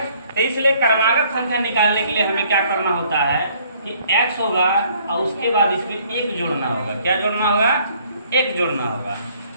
तो इसलिए क्रमागत संख्या निकालने के लिए हमें क्या करना होता है कि x होगा और उसके बाद इसमें 1 जोड़ना होगा। क्या जोड़ना होगा? 1 जोड़ना होगा।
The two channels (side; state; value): both; inverted; correlation -0.61